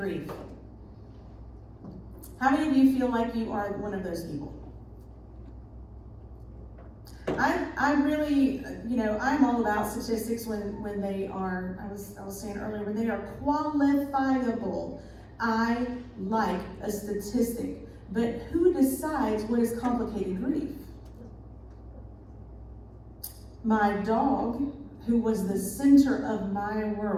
How many of you feel like you are one of those people? I really, I'm all about statistics when they are, I was saying earlier, when they are qualifiable. I like a statistic. But who decides what is complicated grief? My dog, who was the center of my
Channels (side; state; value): both; identical; correlation 1.00